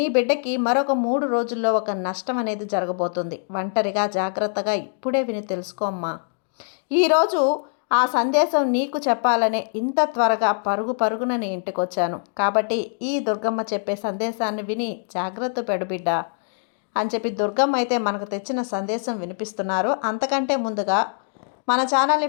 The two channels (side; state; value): right; silent; digital silence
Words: బిడ్డకి మరొక 3 రోజుల్లో ఒక నష్టం అనేది జరగబోతుంది. ఒంటరిగా జాగ్రత్తగా ఇప్పుడే విని తెలుసుకోమ్మా. ఈరోజు ఆ సందేశం నీకు చెప్పాలనే ఇంత త్వరగా పరుగున నీ ఇంటికి వచ్చాను. కాబట్టి ఈ దుర్గమ్మ చెప్పే సందేశాన్ని విని జాగ్రత్త పెడు బిడ్డ అని చెప్పి దుర్గమ్మ అయితే మనకు తెచ్చిన సందేశం వినిపిస్తున్నారు. అంతకంటే ముందుగా మన ఛానల్ని